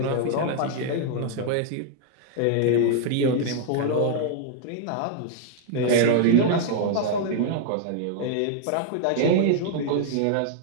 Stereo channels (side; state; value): both; different; correlation -0.01